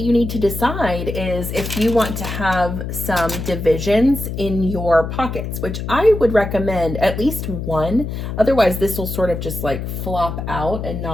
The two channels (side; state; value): left; noise; hum, 5 dB below the sound